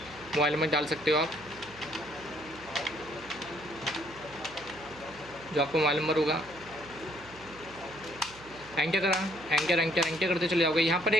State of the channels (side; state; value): right; noise; hum, 21 dB below the sound